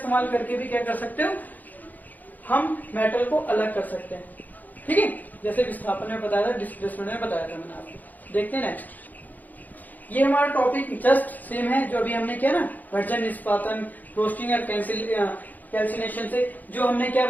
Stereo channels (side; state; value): right; late; 0.083 ms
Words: करके भी क्या कर सकते हो, हम मेटल को अलग कर सकते हैं। ठीक है, जैसे विस्थापन में बताया था, डिस्प्लेसमेंट में बताया था मैंने आपको। देखते हैं नेक्स्ट, ये हमारा टॉपिक जस्ट सेम है जो अभी हमने किया ना, वर्जन, निष्पादन, रोस्टिंग और कैल्सिनेशन से जो हमने क्या